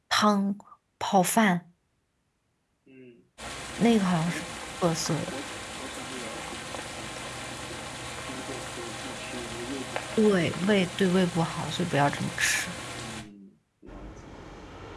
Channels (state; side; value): identical; both; correlation 1.00